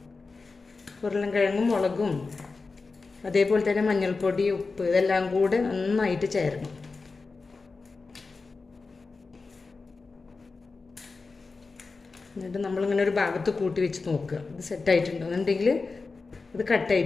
ഉരുളൻകിഴങ്ങും മുളകും അതേപോലെ തന്നെ മഞ്ഞൾപ്പൊടി, ഉപ്പ് ഇതെല്ലാം കൂടെ നന്നായിട്ട് ചേരണം. എന്നിട്ട് നമ്മളിങ്ങനെ ഒരു ഭാഗത്ത് കൂട്ടി വെച്ച് നോക്കുക, ഇത് സെറ്റായിട്ടുണ്ടോ എന്നുണ്ടെങ്കിൽ ഇത്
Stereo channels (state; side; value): quieter; right; 4.1 dB